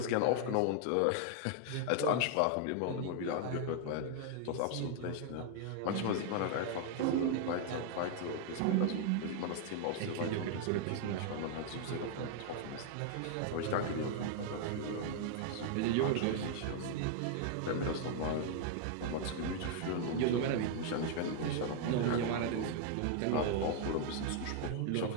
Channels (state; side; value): different; both; correlation 0.00